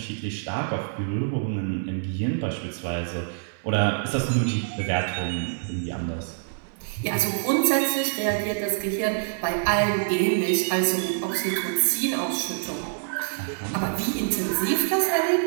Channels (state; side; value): silent; left; digital silence